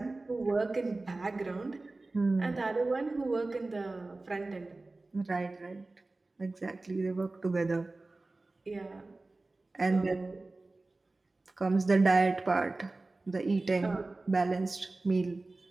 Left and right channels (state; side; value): quieter; left; 3.2 dB